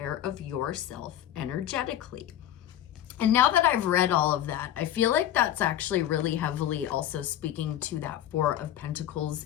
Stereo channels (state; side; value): quieter; right; 11.8 dB